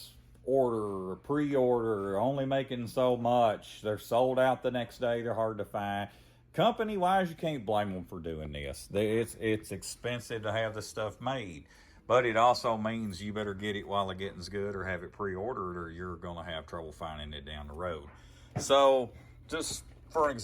pre-order, only making so much. They're sold out the next day. They're hard to find. Company-wise, you can't blame them for doing this. It's expensive to have this stuff made. But it also means you better get it while the getting's good, or have it pre-ordered, or you're going to have trouble finding it down the road. So, just for an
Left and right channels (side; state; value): both; identical; correlation 1.00